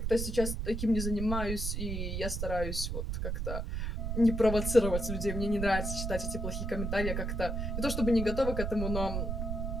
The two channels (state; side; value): noise; right; rumble, 2 dB below the sound